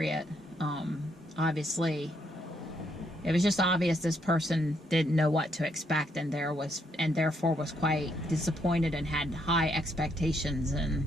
Obviously, it was just obvious this person didn't know what to expect, and therefore was quite disappointed and had high expectations. And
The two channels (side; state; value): both; normal; correlation 0.75